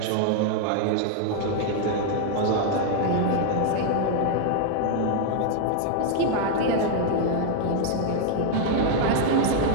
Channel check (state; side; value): different; both; correlation 0.00